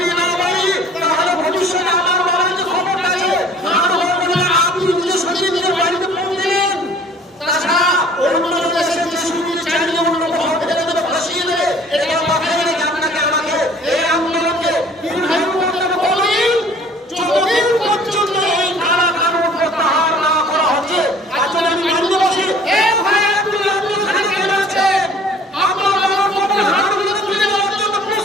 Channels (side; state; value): both; normal; correlation 0.52